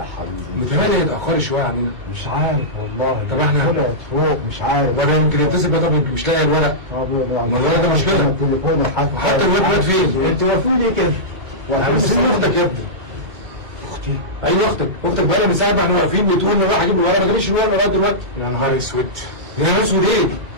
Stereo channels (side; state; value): left; late; 2.3 ms